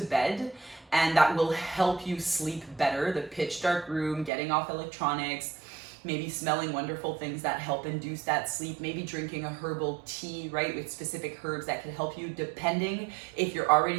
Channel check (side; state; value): left; drops out; at 4.3 s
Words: and that will help you sleep better. The pitch dark room, getting off electronics, maybe smelling wonderful things that help induce that sleep, maybe drinking a herbal tea, right, with specific herbs that can help you, depending if you're